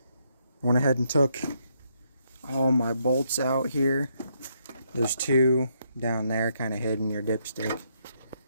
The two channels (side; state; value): both; inverted; correlation -0.75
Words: Went ahead and took all my bolts out here. There's two down there, kind of hidden your dipstick.